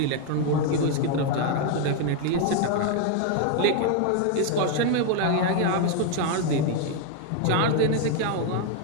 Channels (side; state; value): both; different; correlation 0.01